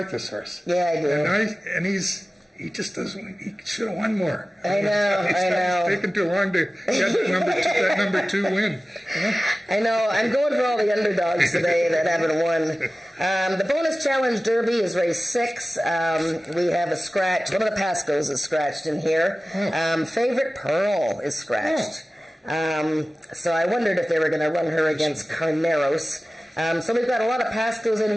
this horse. Yeah, I do. And he just doesn't. He should have won more. I know. It's taken too long to get that number 2 win. You know? I know. I'm going for all the underdogs today that haven't won. The bonus challenge derby is race 6. We have a scratch. One of the Pascos is scratched in here. Favorite Pearl is scratched. So I wondered if they were going to run her against Carneros. So we've got a lot of Pascos in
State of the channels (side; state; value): both; normal; correlation 0.96